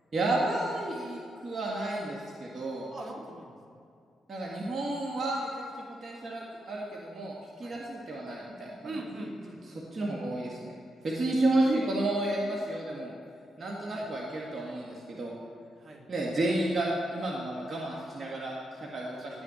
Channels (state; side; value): normal; both; correlation 0.83